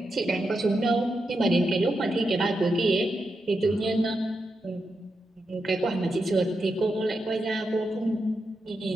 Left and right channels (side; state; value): both; normal; correlation 0.86